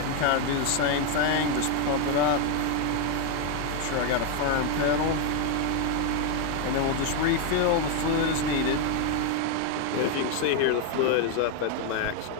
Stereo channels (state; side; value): different; both; correlation 0.01